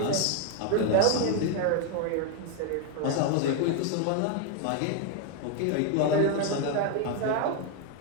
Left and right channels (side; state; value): both; different; correlation 0.01